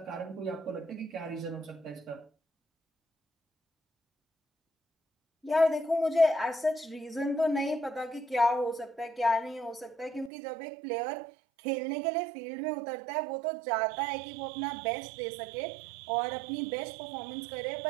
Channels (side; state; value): left; drops out; at 10.3 s